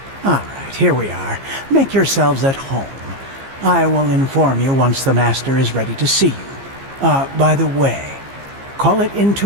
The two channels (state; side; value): late; left; 15 ms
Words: All right, here we are. Make yourselves at home. I will inform you once the Master is ready to see you. By the way, call it